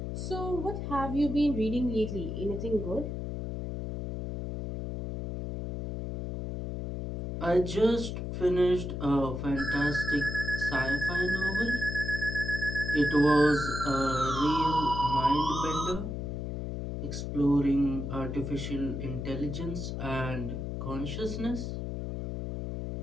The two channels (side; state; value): left; noise; hum, 4 dB below the sound